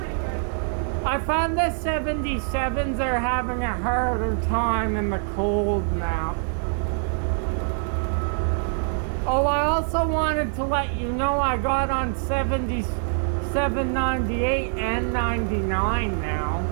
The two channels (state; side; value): silent; left; 62 dB below the other